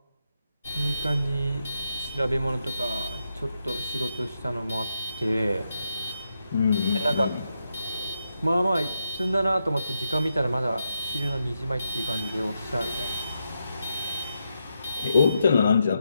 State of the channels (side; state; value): both; inverted; correlation -0.84